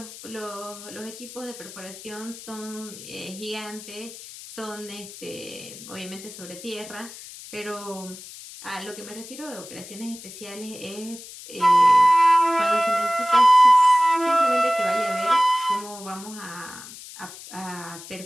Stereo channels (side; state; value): left; noise; hiss, 15 dB below the sound